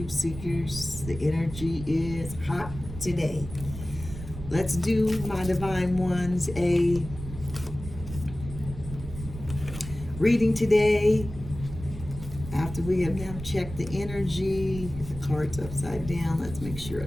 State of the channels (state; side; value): noise; right; rumble, 11 dB below the sound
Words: seekers, the energy is hot today. Let's do, my divine ones, a reading today. After we have now checked the energy, the card's upside down. Let's make sure